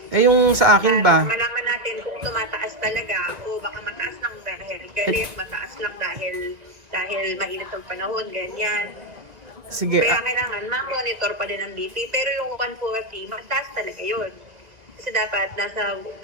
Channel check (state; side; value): late; left; 1.9 ms